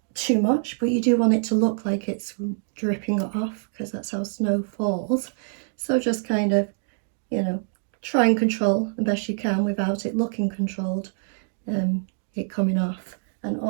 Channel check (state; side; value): silent; left; digital silence